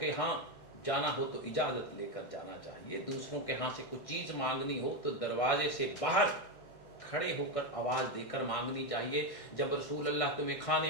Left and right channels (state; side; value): late; right; 1.6 ms